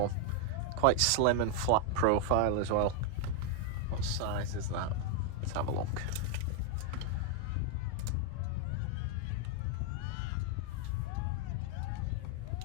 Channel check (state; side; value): different; both; correlation 0.01